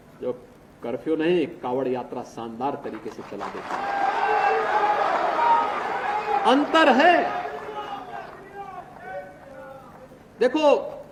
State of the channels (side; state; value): both; identical; correlation 1.00